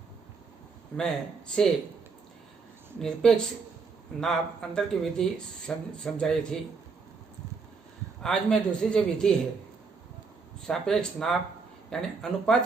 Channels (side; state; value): left; quieter; 4.8 dB